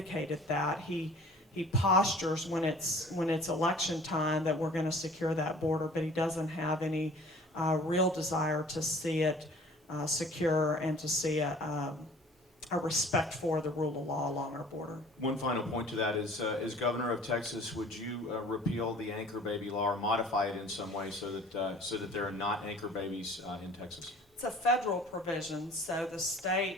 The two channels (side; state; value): both; normal; correlation 0.49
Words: that. He postures when it's election time that we're going to secure that border, but he doesn't have any real desire to see it secure and to see a respect for the rule of law along our border. One final point to that is, as governor of Texas, would you repeal the anchor baby law or modify it in some way so that there are not anchor babies in Texas? It's a federal provision, so the